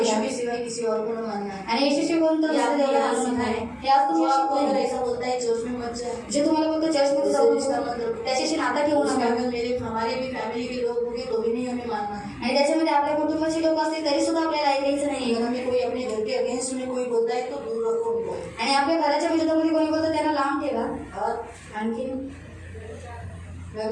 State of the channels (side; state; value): both; identical; correlation 1.00